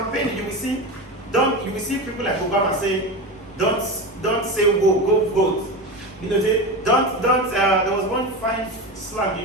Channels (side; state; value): right; noise; hum, 28 dB below the sound